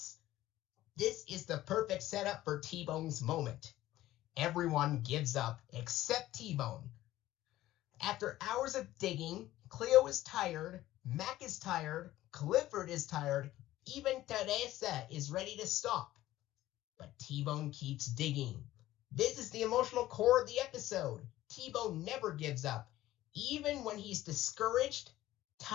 This is the perfect setup for T-Bone's moment. Everyone gives up except T-Bone. After hours of digging, Cleo is tired, Mac is tired, Clifford is tired, even Teresa is ready to stop. But T-Bone keeps digging. This is the emotional core of the episode. T-Bone never gives up, even when he's discouraged,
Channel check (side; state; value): right; quieter; 15.1 dB